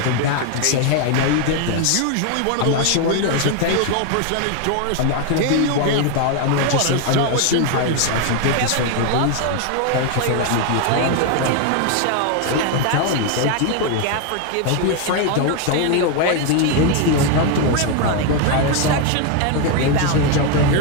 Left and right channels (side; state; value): both; different; correlation 0.01